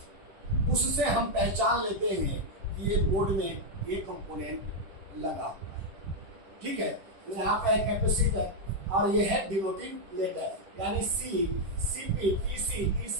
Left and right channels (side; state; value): left; late; 10 ms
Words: उससे हम पहचान लेते हैं कि ये बोर्ड में ये कंपोनेंट लगा हुआ है। ठीक है, यहाँ पे कैपेसिटर और ये है डिनोटिंग लेटर यानी C, CP, PC,